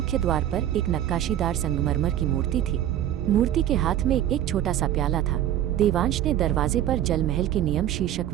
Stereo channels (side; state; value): left; quieter; 11.7 dB